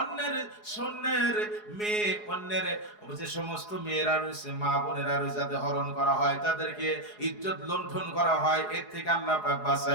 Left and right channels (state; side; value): late; right; 4.8 ms